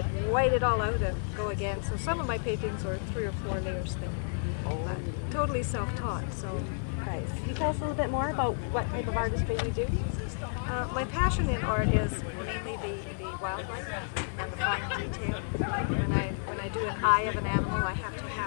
white it all out and go again. So some of my paintings are 3 or 4 layers thick, but totally self-taught. So Nice. Can you tell us a little bit more about what type of artistry you do? my passion in art is mainly the wildlife and the fine detail. When I do an eye of an animal, I have to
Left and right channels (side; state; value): right; silent; 57 dB below the other